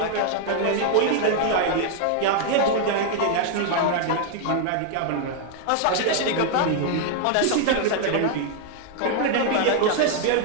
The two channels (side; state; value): both; different; correlation 0.00